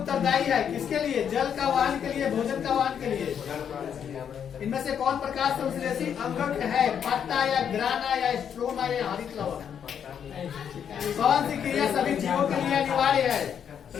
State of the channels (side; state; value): right; quieter; 8.2 dB